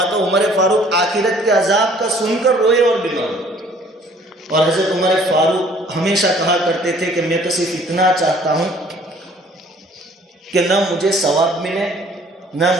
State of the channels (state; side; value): normal; both; correlation 0.56